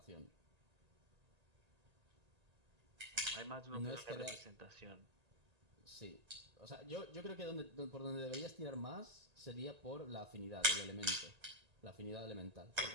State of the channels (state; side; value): late; left; 1.8 ms